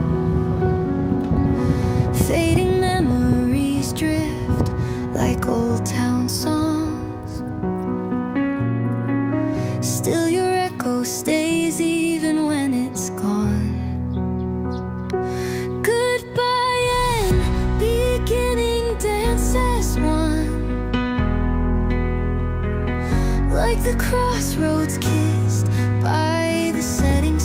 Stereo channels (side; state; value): both; identical; correlation 1.00